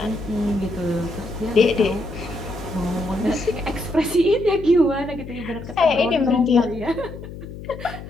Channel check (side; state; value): left; noise; hum, 12 dB below the sound